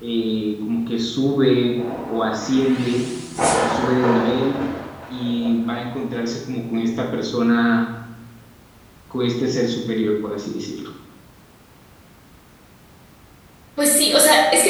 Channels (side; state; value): both; identical; correlation 1.00